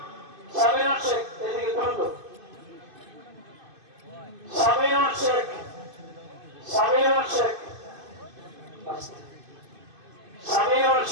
শেখ, এদিকে দ্রুত সামিরুল শেখকে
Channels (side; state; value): left; late; 2.5 ms